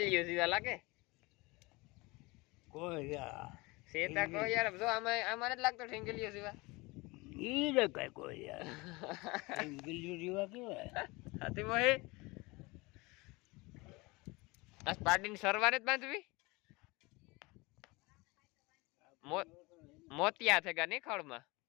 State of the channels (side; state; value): right; quieter; 24.1 dB